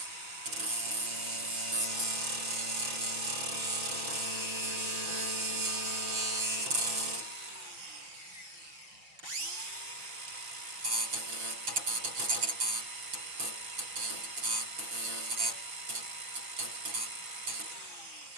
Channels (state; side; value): late; left; 5.9 ms